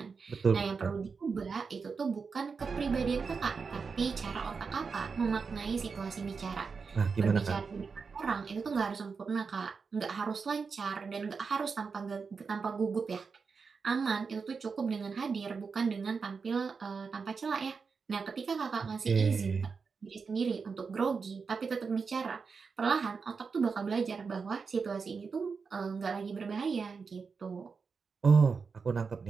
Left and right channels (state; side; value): quieter; left; 5.2 dB